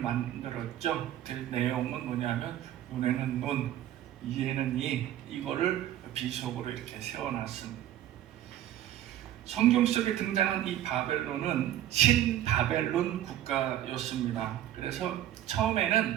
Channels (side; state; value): left; quieter; 12.3 dB